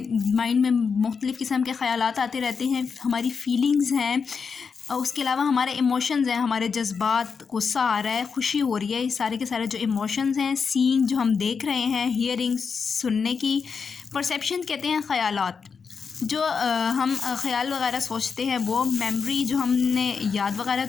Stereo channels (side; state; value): right; quieter; 5.7 dB